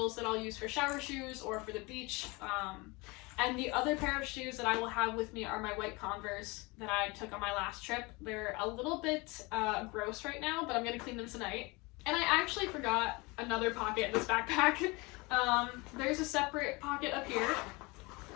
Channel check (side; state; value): right; quieter; 25.5 dB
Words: that I'll use for shower shoes or for the beach. And the other pair of shoes that I will have with me are my white Converse that I took on my last trip. They're a little bit gross right now, but I'm going to clean them tonight. And I actually forgot another pocket in this backpack. There's a separate pocket up here.